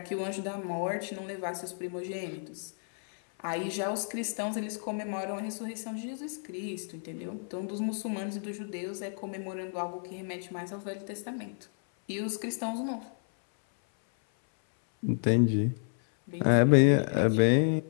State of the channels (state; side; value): silent; right; 57 dB below the other